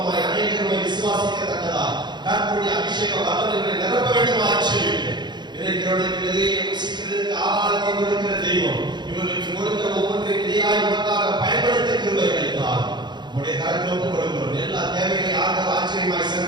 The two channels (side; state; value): left; late; 0.21 ms